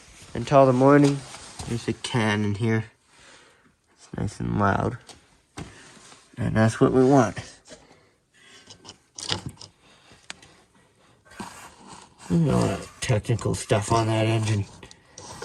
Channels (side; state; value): both; identical; correlation 1.00